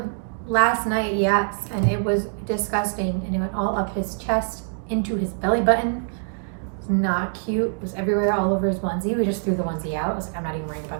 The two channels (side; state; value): left; silent; digital silence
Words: last night, yes, and it was disgusting, and it went all up his chest into his belly button. It was not cute. It was everywhere, all over his onesie. We just threw the onesie out. I was like, I'm not even worrying